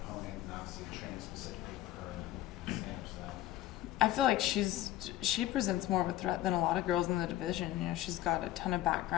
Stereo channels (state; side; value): quieter; right; 14.4 dB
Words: opponent, and obviously training specifically for her and stand-up style? I feel like she presents more of a threat than a lot of girls in the division. You know, she's got a ton of